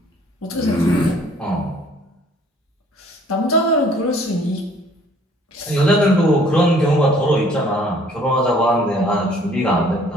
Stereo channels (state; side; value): normal; both; correlation 0.57